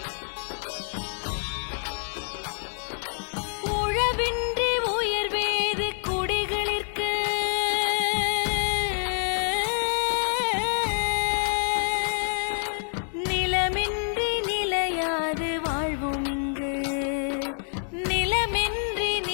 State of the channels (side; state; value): right; silent; 60 dB below the other